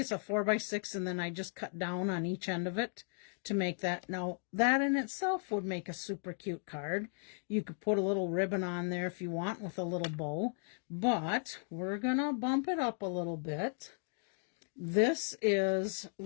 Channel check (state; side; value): silent; right; 54 dB below the other